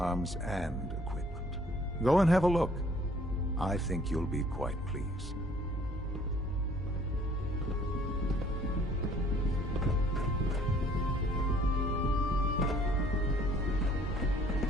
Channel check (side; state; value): both; normal; correlation 0.59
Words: and equipment. Go and have a look. I think you'll be quite pleased.